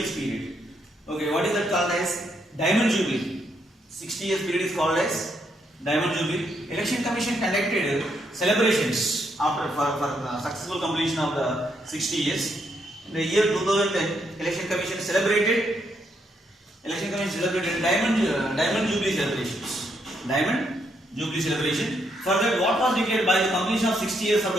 period. Okay, what is that called as? Diamond Jubilee. 60 years period is called as Diamond Jubilee. Election Commission conducted celebrations after for successful completion of the 60 years. In the year 2010, Election Commission celebrated Diamond Jubilee celebrations. Diamond Jubilee celebration. For that, what was declared by the completion of 60 years of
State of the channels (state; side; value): normal; both; correlation 0.76